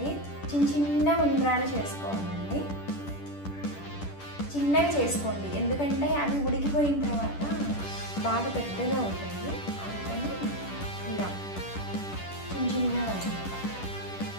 చిన్న ఉండ్రాలు చేసుకోవాలండి. చిన్నగా చేసుకోండి, ఎందుకంటే అవి ఉడికిపోయిన తర్వాత బాగా పెద్దగా ఉంటాయి. అందుకని ఇలా చిన్నగా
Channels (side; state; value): right; late; 10 ms